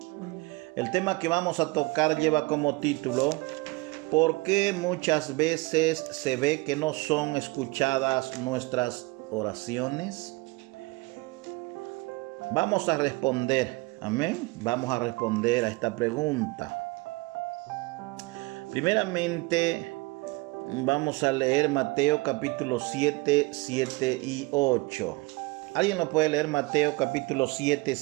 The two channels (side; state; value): left; quieter; 24.1 dB